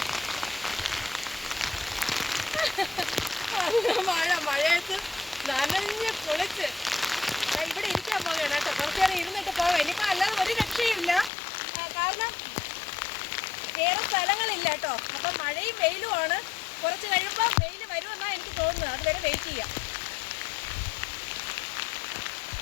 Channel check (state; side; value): drops out; right; at 11.3 s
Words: മഴയത്ത് നനഞ്ഞ് പൊളിച്ച് ഇവിടെ ഇരിക്കാൻ പോവുകയാണ് കേട്ടോ. കുറച്ച് നേരം ഇരുന്നിട്ട് പോകാം. ഇനിയിപ്പോൾ അല്ലാതെ ഒരു രക്ഷയില്ല, കാരണം വേറെ സ്ഥലങ്ങളില്ല കേട്ടോ. അപ്പം മഴയും വെയിലുമാണ്. കുറച്ച് കഴിയുമ്പോൾ വെയിൽ വരുമെന്നാണ് എനിക്ക് തോന്നുന്നത്. അതുവരെ വെയിറ്റ് ചെയ്യാം.